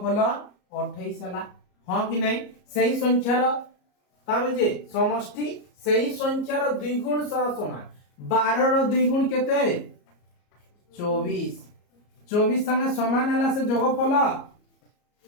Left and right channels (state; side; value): late; right; 34 ms